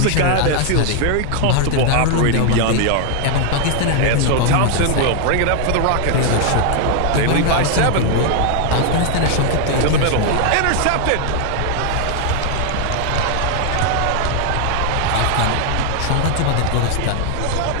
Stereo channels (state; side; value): different; both; correlation 0.00